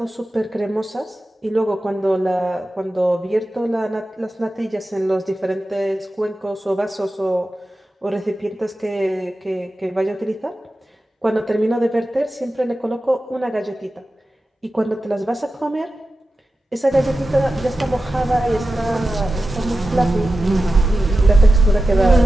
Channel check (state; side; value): normal; both; correlation 0.93